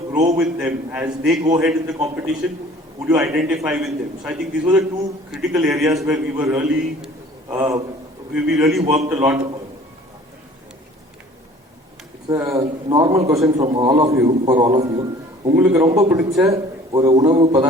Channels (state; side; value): normal; both; correlation 0.50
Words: grow with them as they go ahead in the competition. Would you identify with them? So I think these were the 2 critical areas where we were really, we really worked a lot upon. It's a normal question from all of you, for all of you. உங்களுக்கு ரொம்ப பிடிச்ச ஒரு உணவு